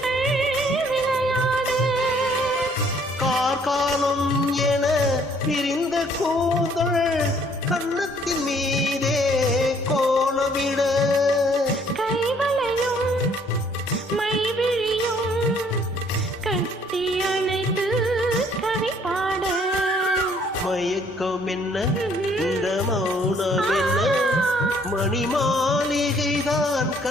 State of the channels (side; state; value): both; normal; correlation 0.62